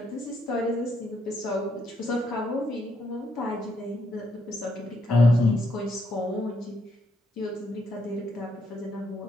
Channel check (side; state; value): both; normal; correlation 0.76